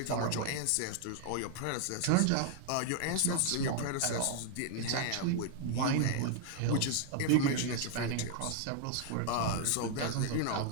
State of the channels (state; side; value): different; both; correlation 0.00